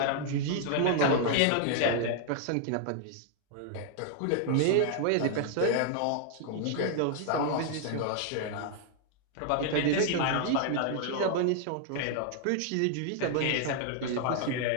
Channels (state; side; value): different; both; correlation 0.00